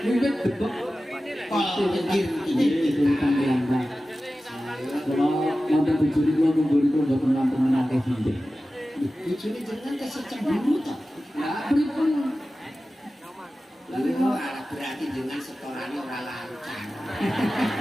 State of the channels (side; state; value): both; normal; correlation 0.95